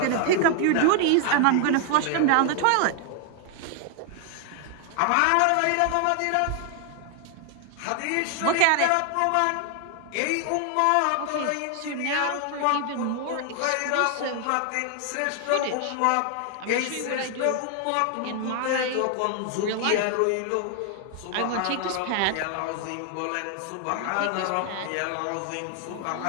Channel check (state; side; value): different; both; correlation 0.00